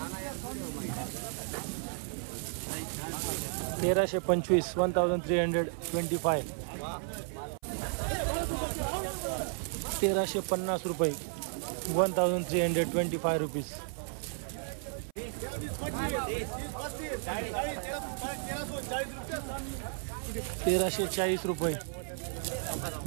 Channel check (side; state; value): left; silent; 55 dB below the other